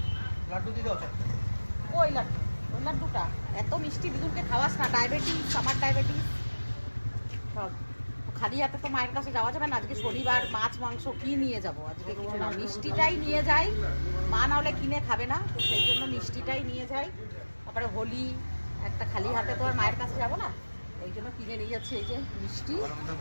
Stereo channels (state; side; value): inverted; both; correlation -1.00